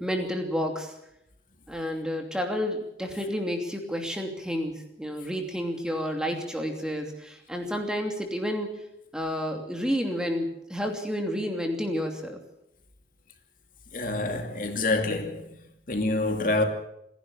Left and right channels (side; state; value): both; normal; correlation 0.57